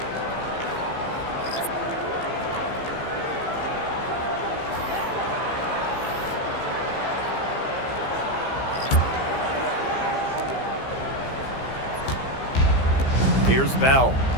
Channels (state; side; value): late; right; 15 ms